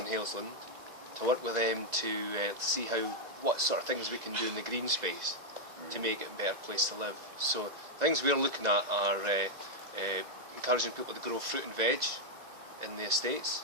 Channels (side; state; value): left; late; 1.9 ms